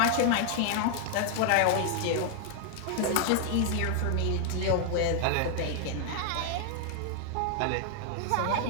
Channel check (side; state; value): both; different; correlation 0.00